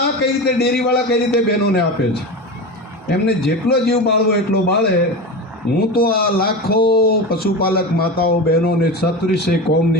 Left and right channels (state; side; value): normal; both; correlation 0.25